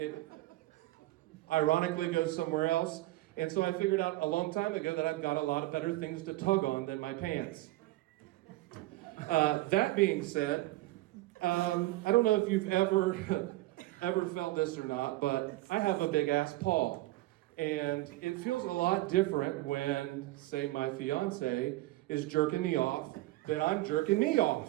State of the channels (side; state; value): left; quieter; 18.4 dB